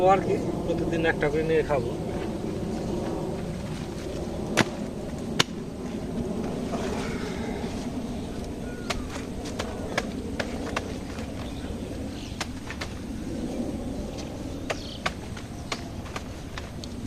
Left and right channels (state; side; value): identical; both; correlation 1.00